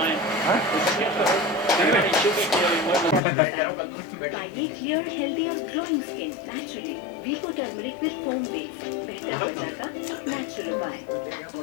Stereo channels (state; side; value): drops out; right; at 3.2 s